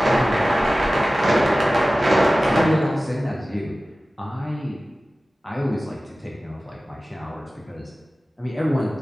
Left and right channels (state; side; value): normal; both; correlation 0.96